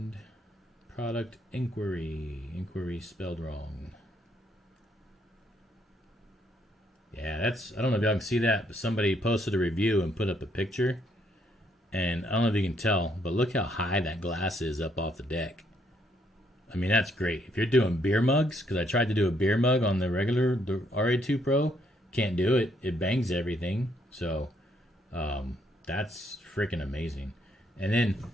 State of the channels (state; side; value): normal; both; correlation 0.72